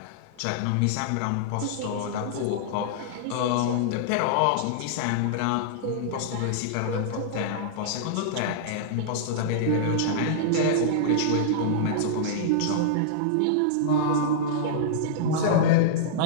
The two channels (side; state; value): both; different; correlation -0.02